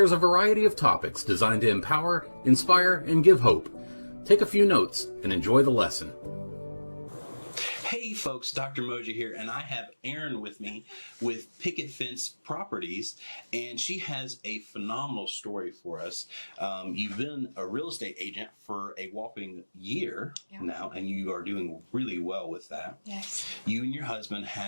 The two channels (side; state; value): both; inverted; correlation -1.00